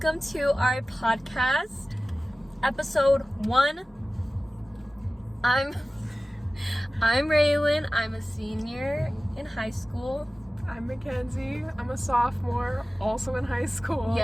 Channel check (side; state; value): both; normal; correlation 0.96